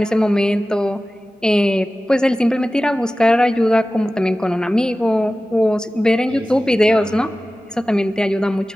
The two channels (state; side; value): normal; both; correlation 0.96